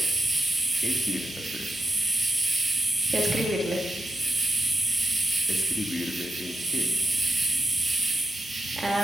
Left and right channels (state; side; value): normal; both; correlation 0.89